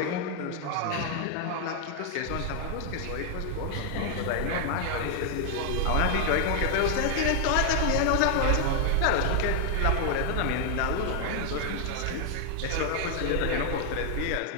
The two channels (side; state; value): both; different; correlation 0.00